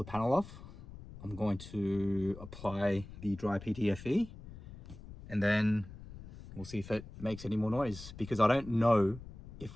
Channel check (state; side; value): noise; left; rumble, 15 dB below the sound